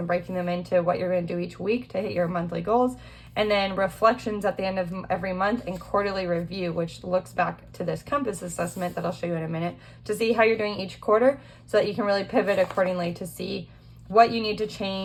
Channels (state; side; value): identical; both; correlation 1.00